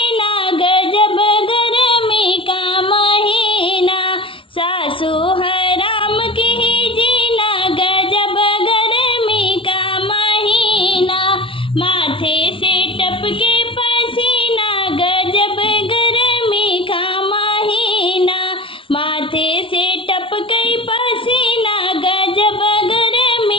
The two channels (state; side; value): late; right; 0.25 ms